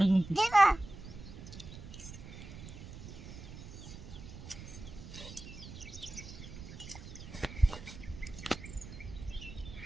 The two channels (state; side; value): noise; right; rumble, 13 dB below the sound